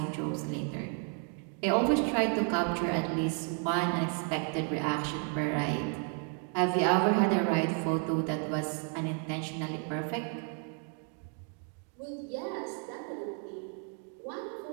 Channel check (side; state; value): left; quieter; 37.5 dB